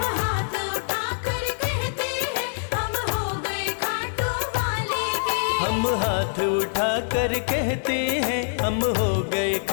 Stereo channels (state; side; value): silent; right; 62 dB below the other